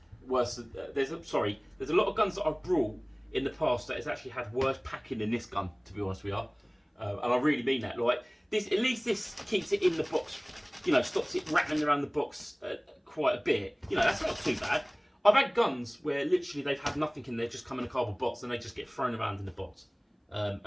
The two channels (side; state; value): both; identical; correlation 1.00